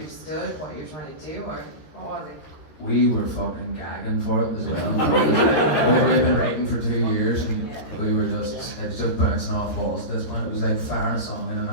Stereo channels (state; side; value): late; right; 13 ms